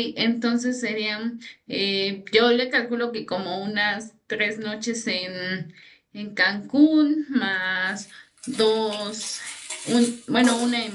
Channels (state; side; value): identical; both; correlation 1.00